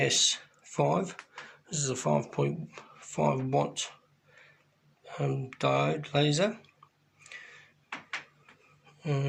This is a 5.5 watt diode laser,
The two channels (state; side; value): identical; both; correlation 1.00